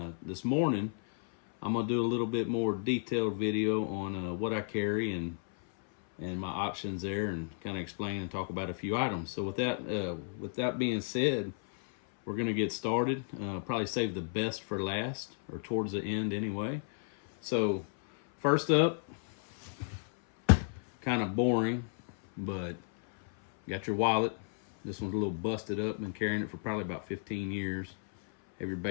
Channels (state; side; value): silent; right; 56 dB below the other